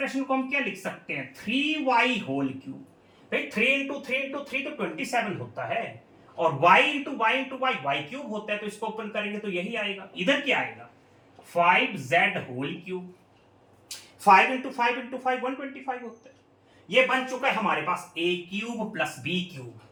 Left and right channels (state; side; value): identical; both; correlation 1.00